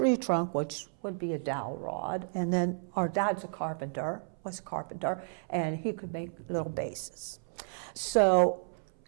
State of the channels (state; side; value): silent; left; 56 dB below the other